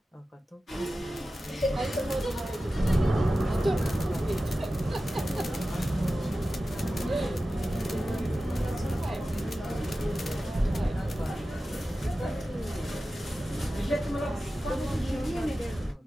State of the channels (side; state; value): both; normal; correlation 0.94